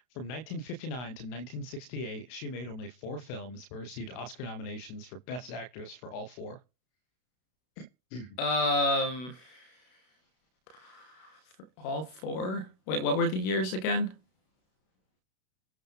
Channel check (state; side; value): late; right; 32 ms